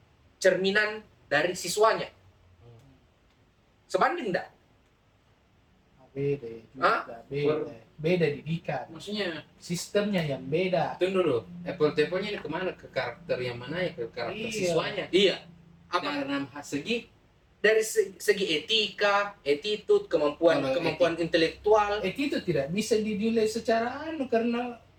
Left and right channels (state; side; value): identical; both; correlation 1.00